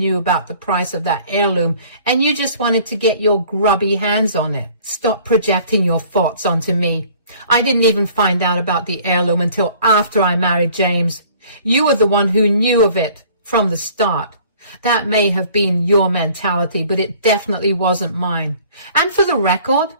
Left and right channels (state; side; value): inverted; both; correlation -0.53